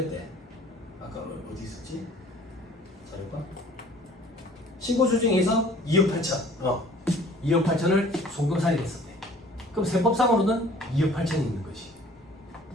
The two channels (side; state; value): both; normal; correlation 0.52